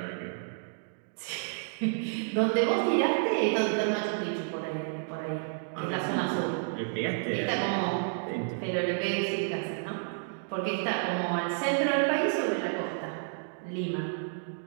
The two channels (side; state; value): left; silent; digital silence